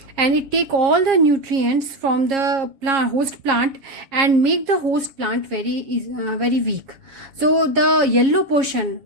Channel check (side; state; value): left; late; 7.4 ms